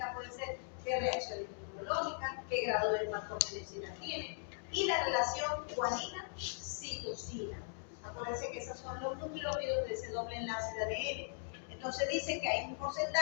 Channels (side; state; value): right; silent; digital silence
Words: pueden ser qué reacciones inmunológicas, qué grado de patogenicidad tiene, y la relación guanina-citosina. Acuérdense que esos son los nucleótidos de ese doble enlace de ADN. Entonces dice que hay un